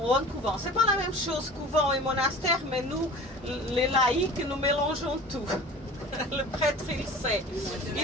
ou un couvent. C'est pas la même chose, couvent et monastère, mais nous, les laïcs, nous mélangeons tout. Le prêtre, il sait.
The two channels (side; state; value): both; normal; correlation 0.40